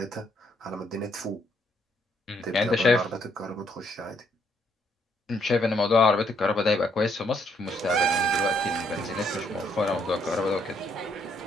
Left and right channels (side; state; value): both; normal; correlation 0.70